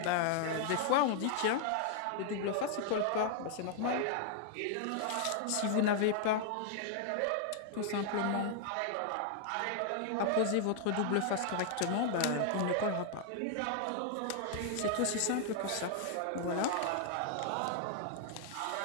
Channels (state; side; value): different; both; correlation 0.00